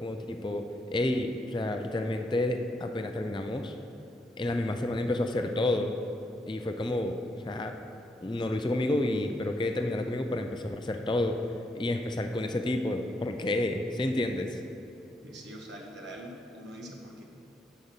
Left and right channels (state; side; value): normal; both; correlation 0.77